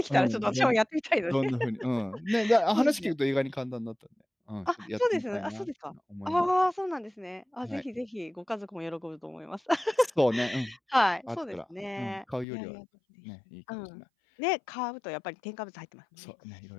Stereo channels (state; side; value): drops out; right; at 12.5 s